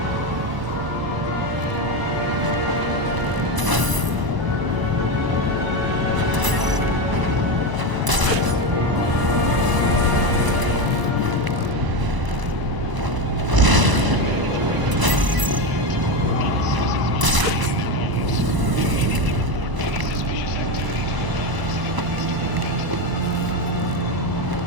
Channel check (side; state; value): left; late; 1.0 ms